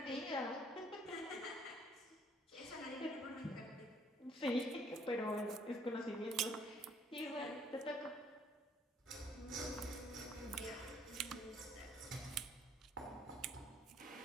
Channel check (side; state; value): both; normal; correlation 0.62